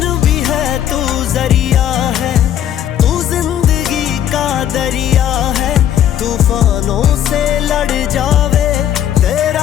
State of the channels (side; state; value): right; quieter; 10.4 dB